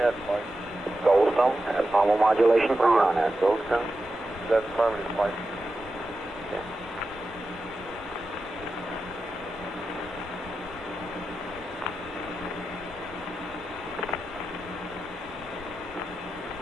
flight. Goldstone has normal modulation Where you on on. at, Goldstone? That's affirmative, flight. Okay.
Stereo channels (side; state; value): both; normal; correlation 0.91